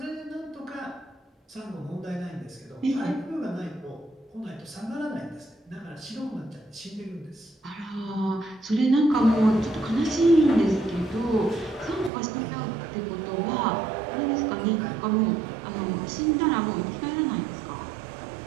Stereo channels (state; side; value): drops out; left; at 12.1 s